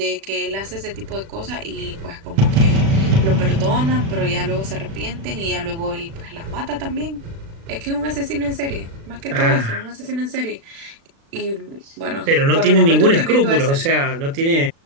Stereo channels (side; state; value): left; late; 36 ms